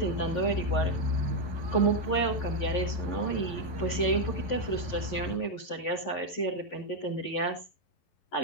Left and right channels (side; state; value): right; late; 11 ms